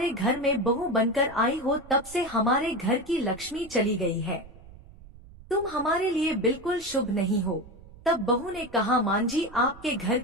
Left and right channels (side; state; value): right; noise; rumble, 20 dB below the sound